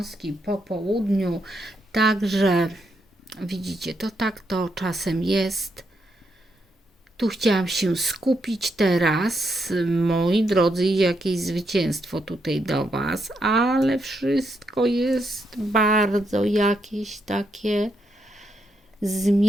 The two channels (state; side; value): normal; both; correlation 0.80